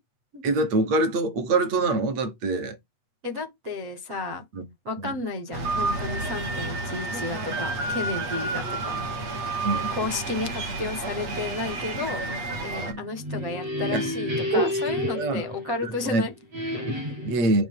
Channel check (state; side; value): late; left; 8.2 ms